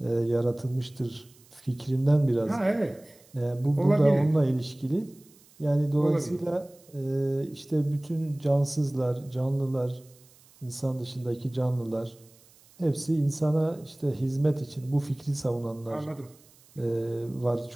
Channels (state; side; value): noise; right; hiss, 28 dB below the sound